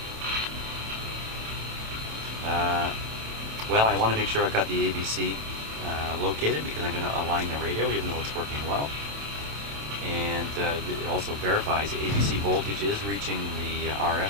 well, I want to make sure I've got the ABC located because I'm going to align the radio even though it's working well. And it also verifies the ABC voltage is reaching the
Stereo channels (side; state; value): left; late; 27 ms